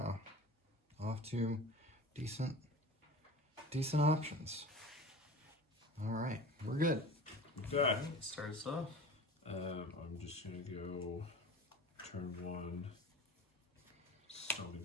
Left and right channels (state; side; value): normal; both; correlation 0.37